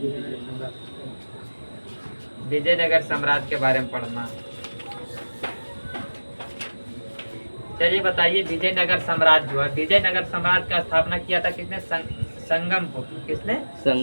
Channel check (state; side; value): inverted; both; correlation -1.00